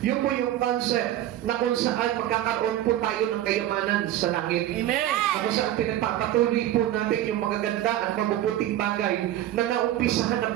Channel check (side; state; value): left; quieter; 12.9 dB